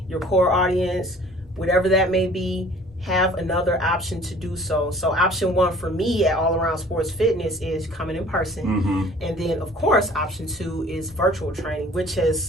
your core audience, whatever that may be. Have another option to do so. So option one for me at All Around Sports Fitness is coming in person. And then, of course, option two is virtual training, which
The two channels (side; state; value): both; normal; correlation 0.51